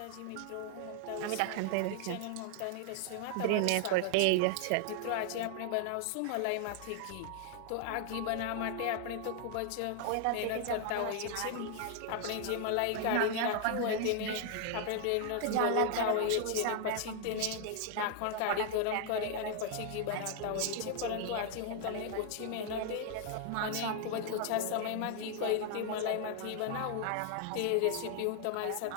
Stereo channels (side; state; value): both; different; correlation 0.00